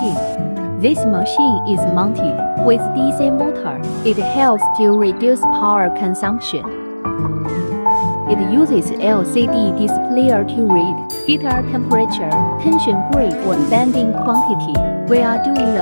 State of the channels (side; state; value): both; inverted; correlation -1.00